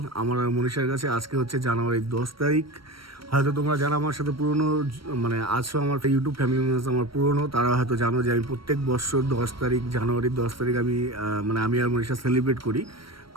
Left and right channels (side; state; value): left; late; 0.74 ms